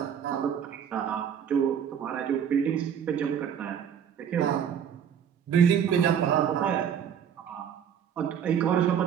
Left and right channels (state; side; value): quieter; left; 8.4 dB